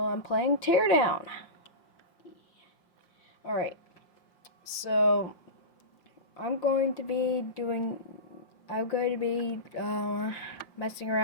playing Teardown. Alright. So I'm going to be messing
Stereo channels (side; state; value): right; late; 5.3 ms